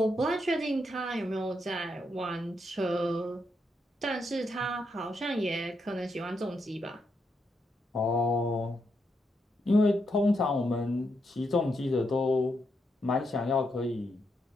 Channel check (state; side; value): normal; both; correlation 0.80